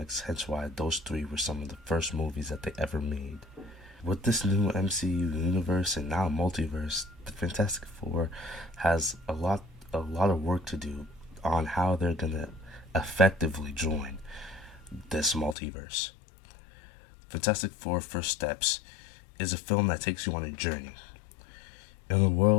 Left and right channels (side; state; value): right; drops out; at 15.6 s